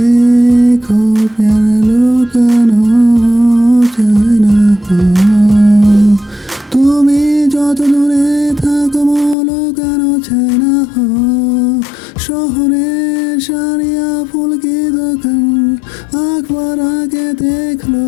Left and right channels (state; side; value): drops out; right; at 9.3 s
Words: प्यार लुकानो যায় না তুমি যত দূরে থাকো লুকানো যায় না শহরে সারিয়া ফুল কি দোকান একবার আগে দেখলো